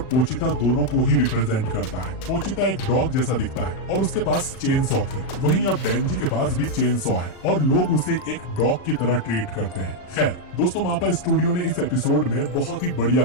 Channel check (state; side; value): late; right; 39 ms